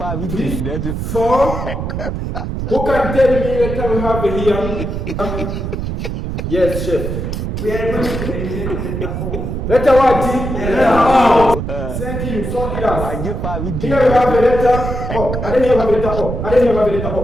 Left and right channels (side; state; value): right; noise; rumble, 4 dB below the sound